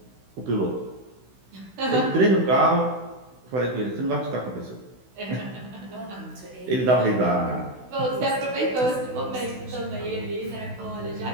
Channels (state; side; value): late; left; 16 ms